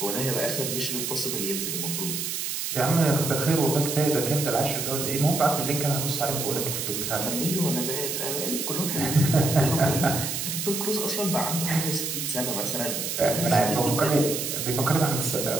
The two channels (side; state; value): right; noise; hiss, 3 dB below the sound